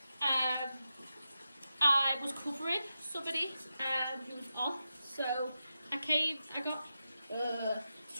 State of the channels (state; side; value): inverted; both; correlation -0.90